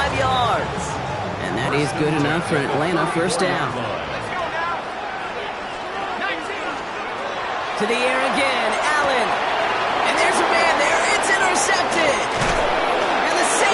yards. And that is good enough for Atlanta first down. To the air again, Allen. And there's a man there. It's intercepted. And the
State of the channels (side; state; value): both; identical; correlation 1.00